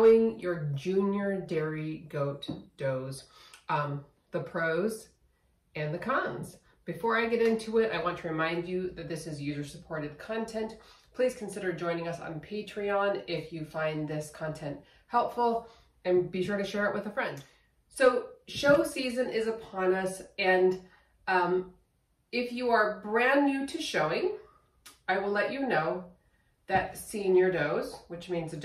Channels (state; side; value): identical; both; correlation 1.00